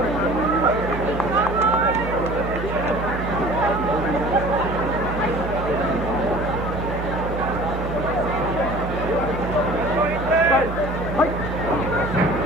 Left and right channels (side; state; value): both; normal; correlation 0.46